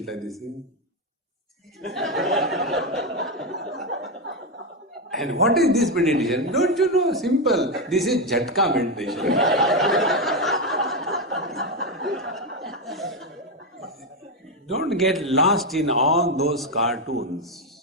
like this. And what is this meditation? Don't you know? Simple. This is Jhatka meditation. Don't get lost in all those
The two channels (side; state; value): both; normal; correlation 0.08